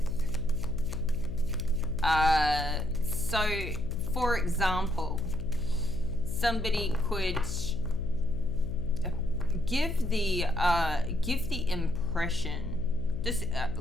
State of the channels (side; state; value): left; noise; hum, 6 dB below the sound